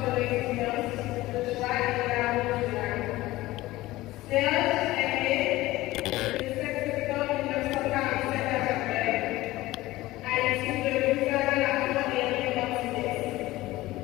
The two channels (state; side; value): quieter; right; 17.8 dB